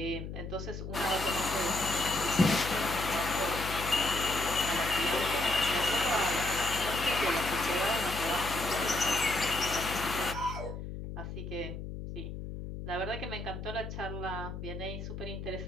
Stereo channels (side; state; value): left; noise; hum, 8 dB below the sound